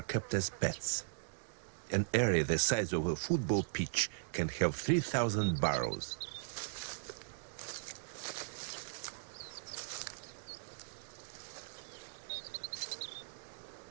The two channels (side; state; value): left; silent; digital silence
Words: kept as pets. An area the size of a football pitch can have 3,000 burrows.